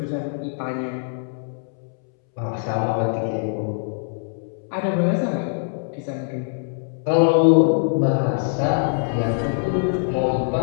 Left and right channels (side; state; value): right; silent; 63 dB below the other